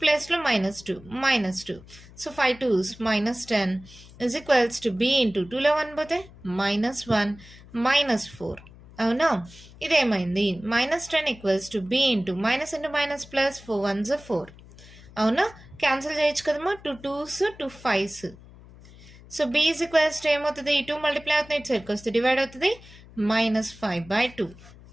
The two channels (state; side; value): noise; left; hum, 21 dB below the sound